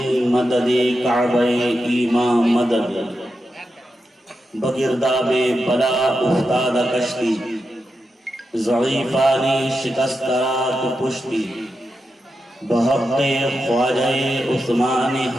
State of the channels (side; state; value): both; normal; correlation 0.88